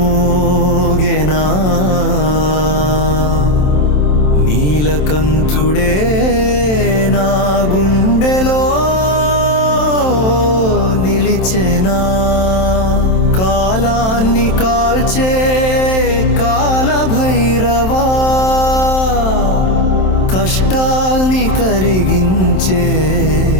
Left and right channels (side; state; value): right; late; 27 ms